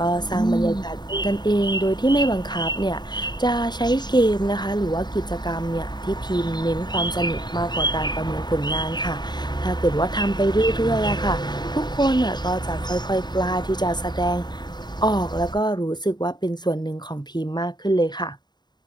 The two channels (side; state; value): right; late; 0.21 ms